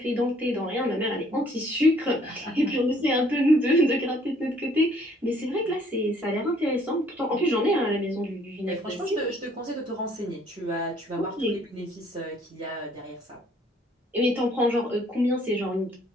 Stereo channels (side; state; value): both; normal; correlation 0.61